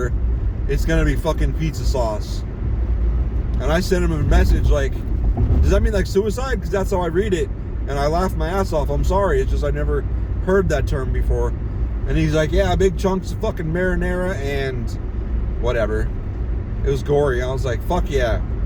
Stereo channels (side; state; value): both; identical; correlation 1.00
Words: it's going to be fucking pizza sauce. And I sent him a message like, does that mean like suicide? Because that's how I read it. And I laughed my ass off. I'm sorry. It's just I never heard that term before. And he's like, yeah, big chunks of fucking marinara and whatever. It was gory. I was like, fuck yeah.